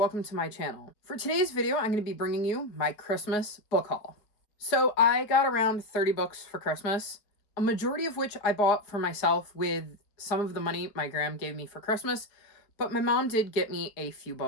to my channel. For today's video, I'm going to be bringing you my Christmas book haul. So I got around 30 books for Christmas, a majority of which I bought for myself with some of the money my gram gave me for Christmas, but my mom did get me a few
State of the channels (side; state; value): right; late; 4.6 ms